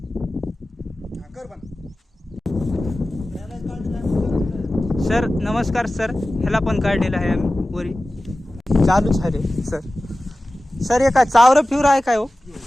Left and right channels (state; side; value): normal; both; correlation 0.96